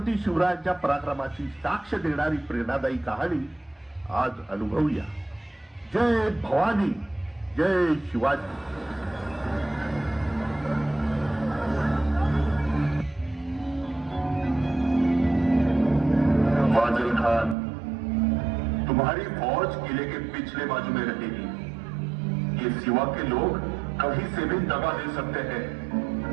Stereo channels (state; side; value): drops out; left; at 17.6 s